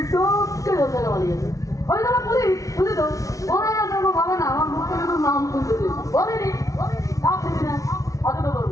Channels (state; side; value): late; right; 0.16 ms